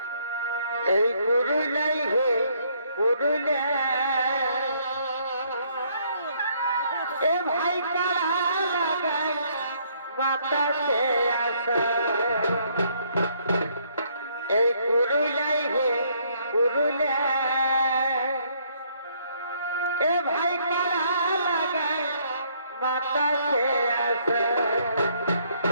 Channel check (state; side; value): inverted; both; correlation -0.67